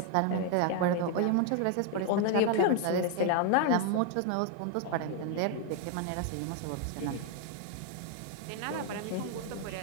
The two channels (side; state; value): both; different; correlation 0.00